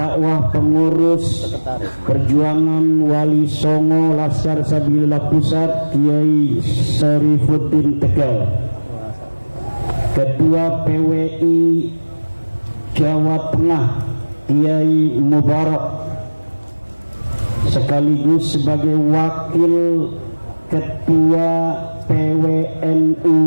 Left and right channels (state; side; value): inverted; both; correlation -1.00